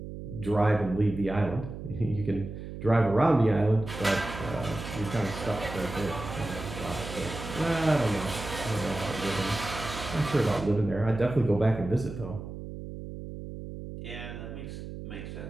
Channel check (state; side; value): noise; right; hum, 9 dB below the sound